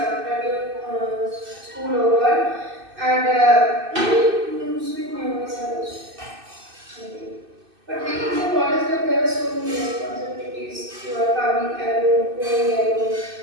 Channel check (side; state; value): left; late; 2.6 ms